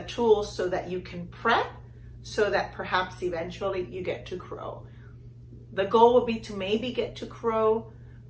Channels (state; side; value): identical; both; correlation 1.00